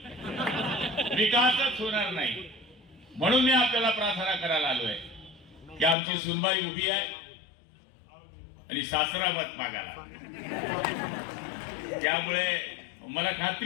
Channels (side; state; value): right; drops out; at 6.0 s